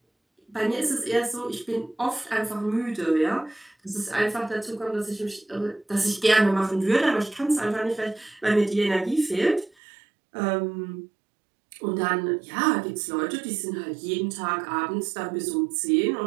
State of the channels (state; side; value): drops out; left; at 9.7 s